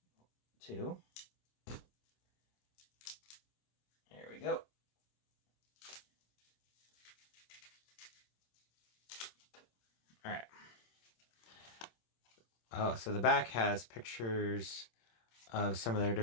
2. we go. All right. Oh, so the back has pictures of some of their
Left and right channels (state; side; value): late; right; 26 ms